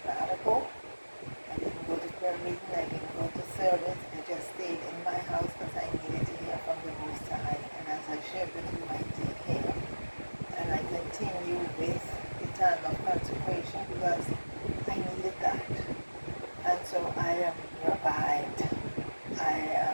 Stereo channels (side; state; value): both; inverted; correlation -1.00